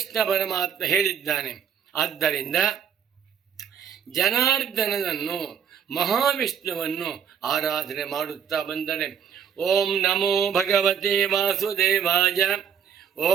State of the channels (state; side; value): quieter; left; 7.6 dB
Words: ಪರಮಾತ್ಮ ಹೇಳಿದ್ದಾನೆ. ಆದ್ದರಿಂದ ಜನಾರ್ದನನನ್ನು, ಮಹಾವಿಷ್ಣುವನ್ನು ಆರಾಧನೆ ಮಾಡುತ್ತಾ ಬಂದರೆ ಓಂ ನಮೋ ಭಗವತೆ ವಾಸುದೇವಾಯ,